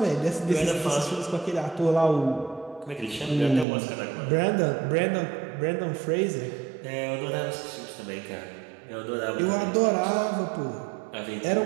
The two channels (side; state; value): left; drops out; at 3.7 s